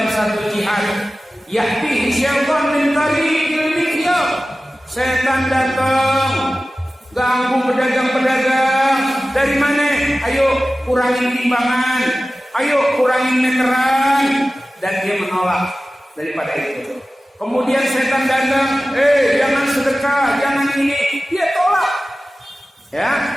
satu jihad, ya'ti syaitan min tariqil mikyab. Setan datang ganggu pedagang-pedagang. Dari mana? Ayo kurangin timbangan, ayo kurangin meteran. Dan dia menolak daripada itu. Kemudian setan datang, jangan sedekah, jangan ini. Dia tolak. Ya,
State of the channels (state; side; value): normal; both; correlation 0.96